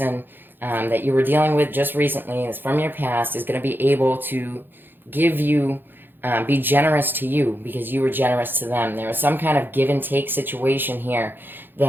that you were dealing with just recently, is from your past, is going to be able to give you be generous to you because you were generous to them. There was some kind of give and take situation here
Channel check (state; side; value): late; left; 0.097 ms